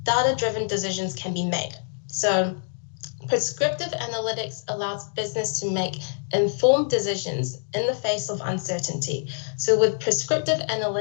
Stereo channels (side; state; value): right; silent; digital silence